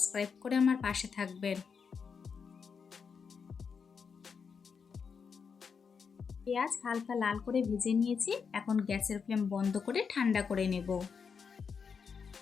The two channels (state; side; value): quieter; right; 6.0 dB